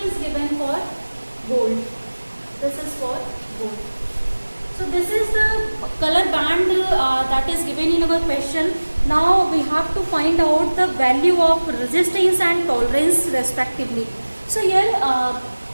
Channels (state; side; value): inverted; both; correlation -1.00